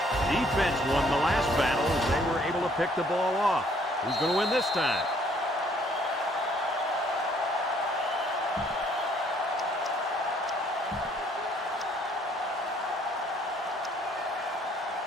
Defense won the last battle as they were able to pick the ball off. Who's going to win this time?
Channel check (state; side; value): normal; both; correlation 0.63